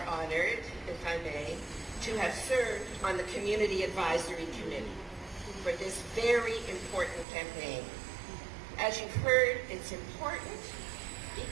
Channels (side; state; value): left; drops out; at 7.2 s